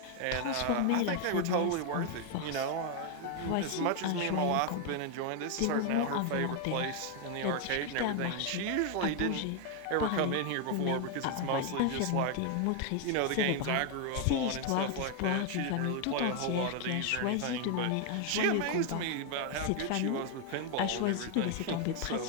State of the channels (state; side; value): different; both; correlation 0.01